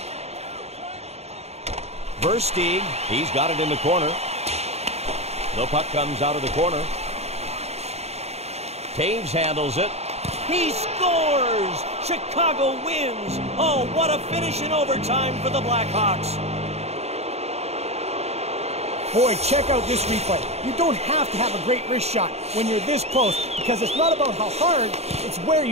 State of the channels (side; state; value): left; late; 0.31 ms